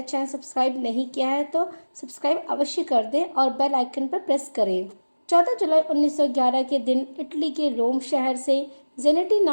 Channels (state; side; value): inverted; both; correlation -1.00